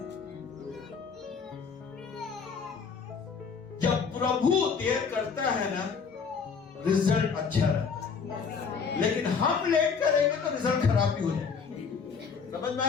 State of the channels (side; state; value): right; quieter; 5.8 dB